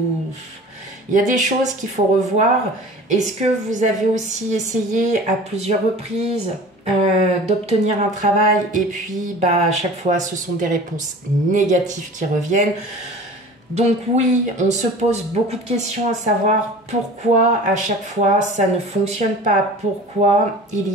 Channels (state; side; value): normal; both; correlation 0.41